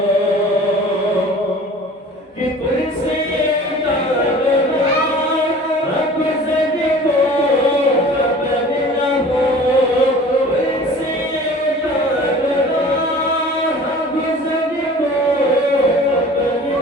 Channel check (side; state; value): both; normal; correlation 0.44